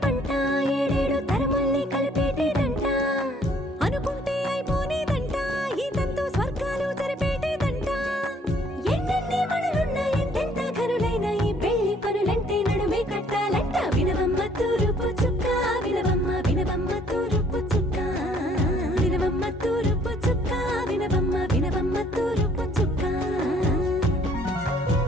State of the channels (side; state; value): both; normal; correlation 0.62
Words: పంట ఏడేడు తరముల్ని కలిపేటేదంట అనుకుంటే అయిపోనేదంట ఈ తంతు స్వర్గాలు జరిపేటేదంట ఎన్నెన్ని మనులున్న ఎంతెంత కనులైన ఈ పెళ్లి పనులంటే నడుమే కట్టాలంట వినవమ్మ తూరుపు చుక్క వినవమ్మ వినవమ్మ తూరుపు చుక్క వినవమ్మ తూరుపు చుక్క వినవమ్మ వినవమ్మ తూరుపు చుక్క